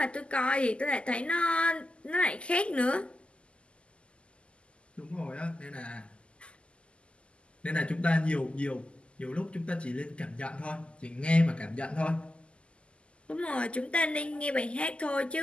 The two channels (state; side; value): late; right; 0.054 ms